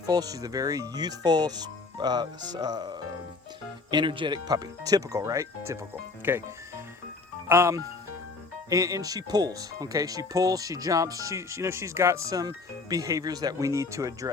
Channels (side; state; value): right; quieter; 4.0 dB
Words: She's a very youthful, energetic puppy. Typical, right? Typical. Okay. And she pulls, okay? She pulls, she jumps, she's got some behaviors that we need to